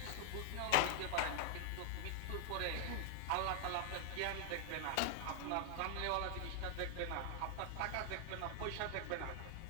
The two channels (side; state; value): both; different; correlation -0.01